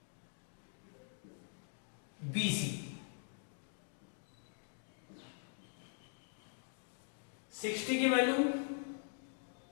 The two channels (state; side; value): silent; right; digital silence